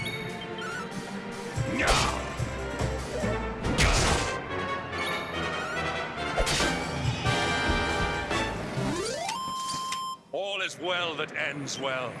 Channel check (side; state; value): both; identical; correlation 1.00